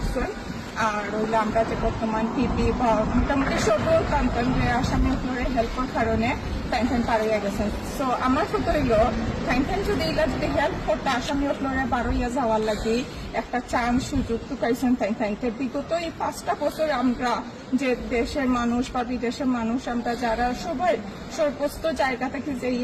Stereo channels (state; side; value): identical; both; correlation 1.00